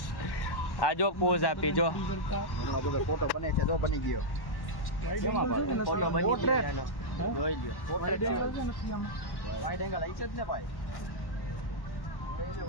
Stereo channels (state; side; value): late; right; 1.1 ms